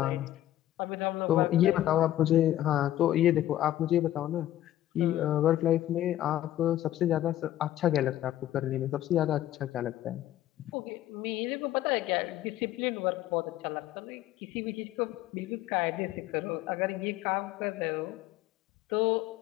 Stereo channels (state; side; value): quieter; right; 13.3 dB